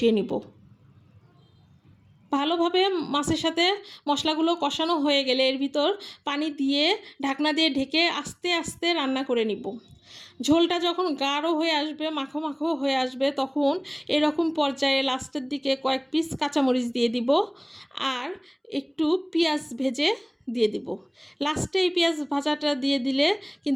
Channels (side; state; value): both; identical; correlation 1.00